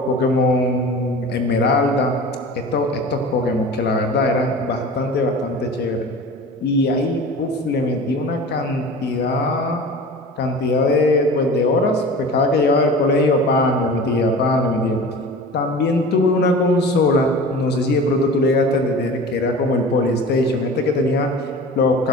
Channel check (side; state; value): both; normal; correlation 0.37